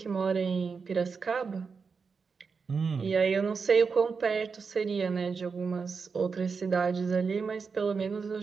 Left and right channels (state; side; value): quieter; left; 5.3 dB